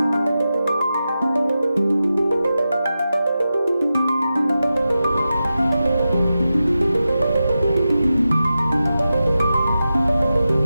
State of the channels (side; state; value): both; inverted; correlation -0.91